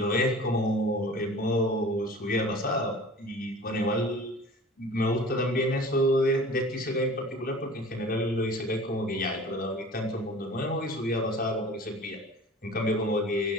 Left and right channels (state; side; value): normal; both; correlation 0.42